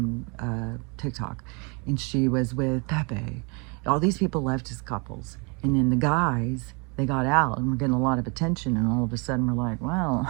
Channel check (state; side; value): quieter; left; 32.1 dB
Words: TikTok, and she was with Pepe. All these people left as couples, and then the guys, they got out and were getting a lot of attention, and all of a sudden we're like, well,